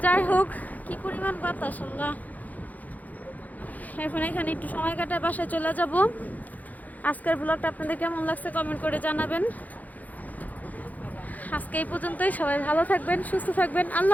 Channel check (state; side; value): late; right; 0.079 ms